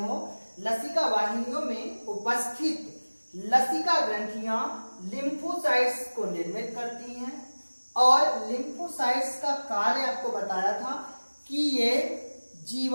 लसिका वाहिनियों में उपस्थित लसिका ग्रंथियां लिम्फोसाइट्स को निर्मित करती हैं। और लिम्फोसाइट्स का कार्य आपको बताया था कि ये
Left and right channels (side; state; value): both; inverted; correlation -1.00